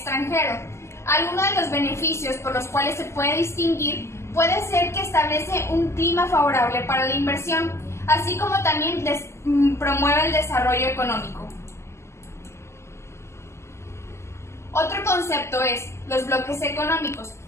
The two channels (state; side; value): late; right; 0.13 ms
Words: Algunos de los beneficios por los cuales se puede distinguir puede ser que establece un clima favorable para la inversión, así como también promueve el desarrollo económico. Otro concepto es los bloques económicos.